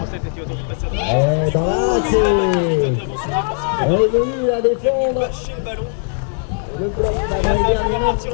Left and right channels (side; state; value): right; silent; 64 dB below the other